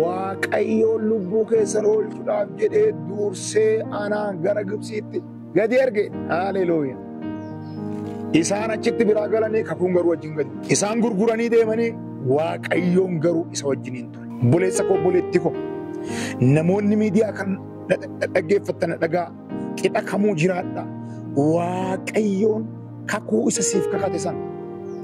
lubbuu keessan oolchuudhaaf jedhee dursee anaan gara Gibxiitti gadi erge. Haalleluuyaa. Isaan achitti biraa galanii kakuun garuu wajjin gadi. Isaan gurguranii deemanii Waaqayyoon garuu isa wajjiniin ture. Buleessa koo buleetti koo namoonni miidiyaa kan dhaggeeffatan dhagaa qixa kamuu jiraadha. Waaqayyoon kakuu isa siif kakate sana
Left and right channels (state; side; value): identical; both; correlation 1.00